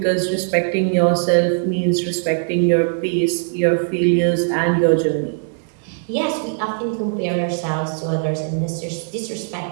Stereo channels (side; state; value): left; silent; 66 dB below the other